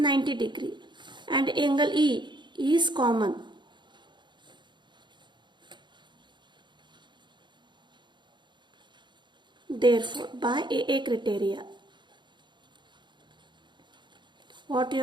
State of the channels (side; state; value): left; late; 0.22 ms